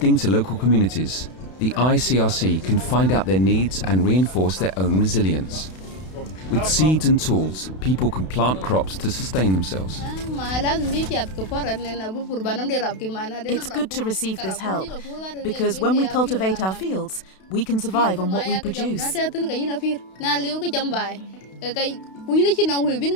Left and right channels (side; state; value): right; late; 32 ms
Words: to local communities, the ICRC can find out their needs and reinforce their own resilience. With seeds and tools, people can plant crops to sustain themselves. It's good to receive this help, because when we cultivate our fields, we can survive on what we produce.